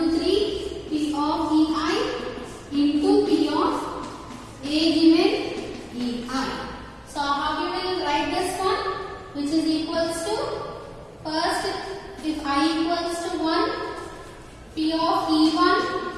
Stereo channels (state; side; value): identical; both; correlation 1.00